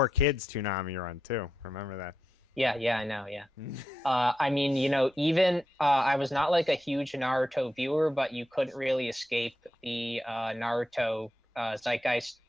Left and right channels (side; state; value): both; normal; correlation 0.86